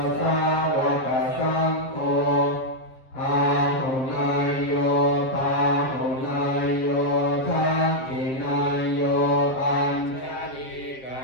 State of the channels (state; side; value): late; right; 7.5 ms